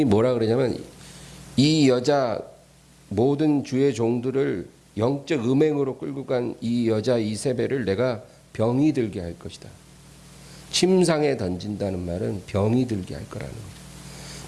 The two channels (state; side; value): identical; both; correlation 1.00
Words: 뭐라 그러냐면 이 여자 모든 주의 종들을 영적 음행으로 끌고 간 이 여자 이세벨을 내가 병이 들게 할 것이다. 침상에 던진다는 말은 병이 들게 할 거라는 거죠.